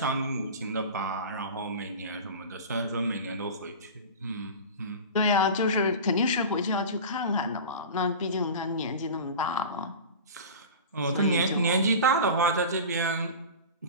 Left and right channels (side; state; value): both; inverted; correlation -0.31